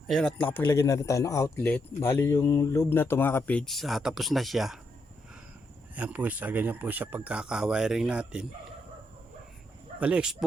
Ayun, at nakapaglagay na rin tayo ng outlet. Bali yung loob na ito mga kapage, tapos na siya. Ayan po siya, ganyan po siya pagkaka-wiring natin. Bali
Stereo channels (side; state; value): both; normal; correlation 0.80